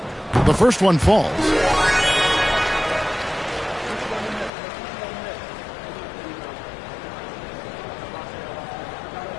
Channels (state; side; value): drops out; right; at 4.5 s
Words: The first one falls.